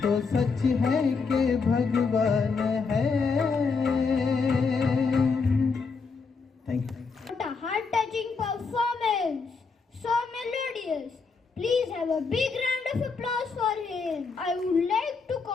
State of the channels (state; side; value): quieter; right; 4.8 dB